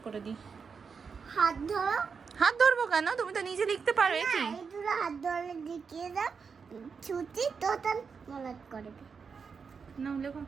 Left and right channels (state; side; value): quieter; left; 5.7 dB